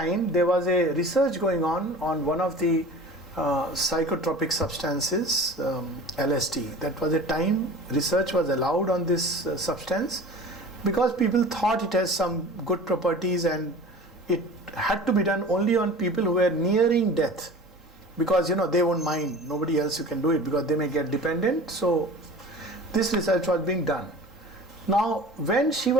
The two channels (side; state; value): both; normal; correlation 0.40